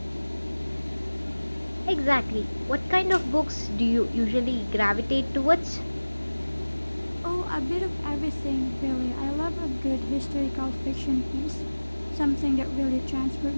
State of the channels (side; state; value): both; inverted; correlation -1.00